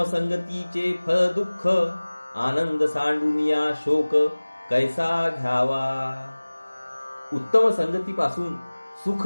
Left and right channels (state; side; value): inverted; both; correlation -1.00